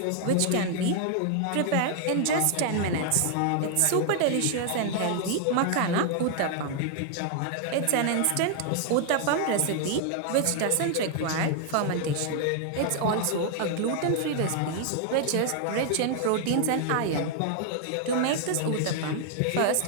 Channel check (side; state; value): both; different; correlation 0.00